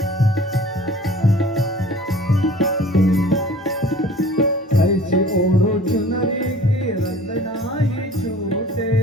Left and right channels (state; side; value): normal; both; correlation 0.47